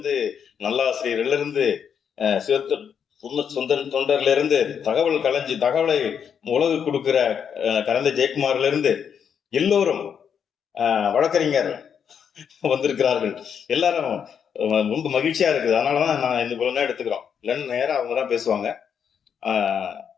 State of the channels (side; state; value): right; quieter; 7.6 dB